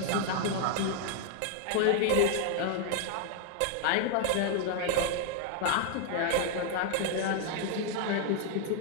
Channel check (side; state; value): both; different; correlation 0.00